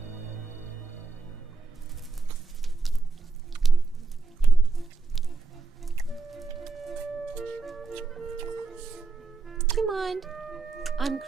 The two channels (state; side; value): quieter; left; 4.0 dB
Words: Do you mind? I'm